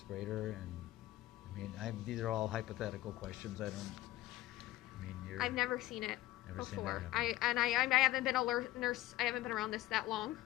And I mean, these are all hypothetical questions. I've never seen it Never seen before. that I haven't been a nurse. I haven't been around this that long,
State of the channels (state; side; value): quieter; right; 16.7 dB